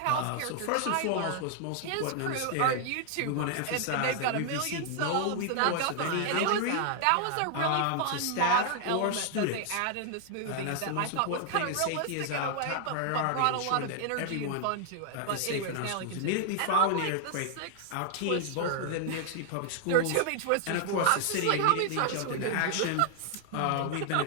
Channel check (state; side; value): different; both; correlation 0.00